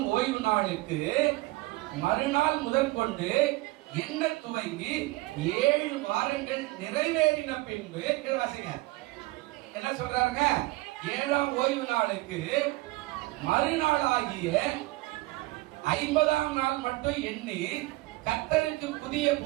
ஓய்வு நாளுக்கு மறுநாள் முதற்கொண்டு என்ன துவங்கி 7 வாரங்கள் நிறைவேறின பின்பு, என்ன சொல்றாருங்க, 7ஆம் ஓய்வு நாளுக்கு மறுநாளாகிய 50ஆம் நாள் மட்டும் எண்ணி கர்த்தருக்கு புதிய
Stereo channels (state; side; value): quieter; left; 21.0 dB